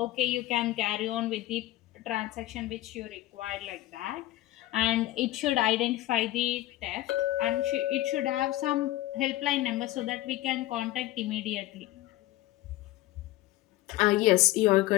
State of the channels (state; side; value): quieter; right; 16.3 dB